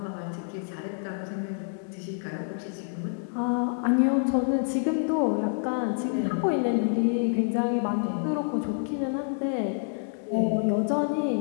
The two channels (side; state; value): right; silent; digital silence